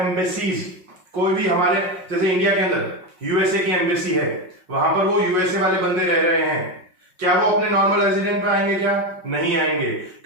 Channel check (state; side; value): late; left; 5.4 ms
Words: कोई भी हमारे जैसे इंडिया के अंदर यूएसए की एम्बेसी है, वहां पर वो यूएसए वाले बंदे रह रहे हैं, क्या वो अपने नॉर्मल रेजिडेंट पे आएंगे क्या? नहीं आएंगे,